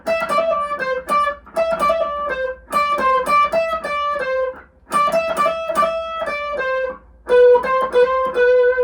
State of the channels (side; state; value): both; identical; correlation 1.00